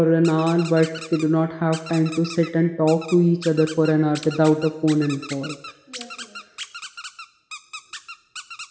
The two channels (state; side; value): identical; both; correlation 1.00